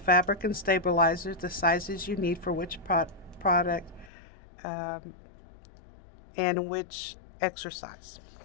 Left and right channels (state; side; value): drops out; right; at 4.1 s